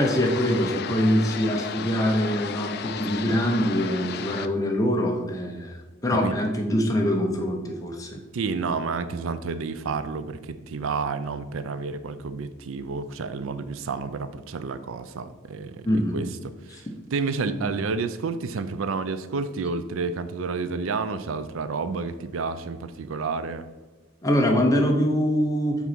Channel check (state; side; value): normal; both; correlation 0.55